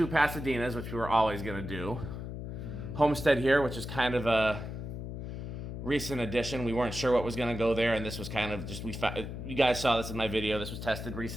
Pasadenas, which we were always going to do. Homestead here, which is kind of a recent addition. We weren't sure what was going to go there, and this was kind of just you guys saw this in my video. This was tested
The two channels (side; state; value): left; noise; hum, 7 dB below the sound